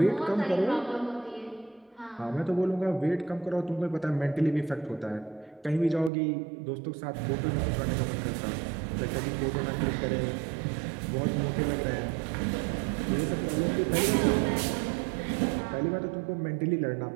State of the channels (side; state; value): left; drops out; at 6.1 s